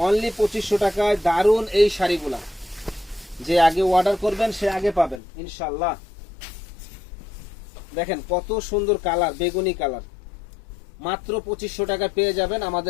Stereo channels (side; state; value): right; drops out; at 5.2 s